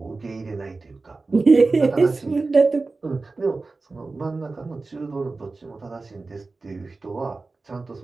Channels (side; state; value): left; quieter; 3.7 dB